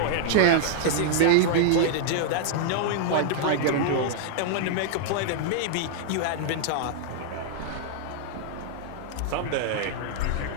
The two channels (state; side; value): different; both; correlation -0.01